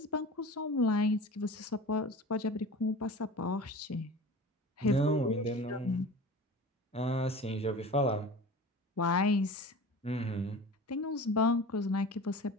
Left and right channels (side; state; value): both; normal; correlation 0.36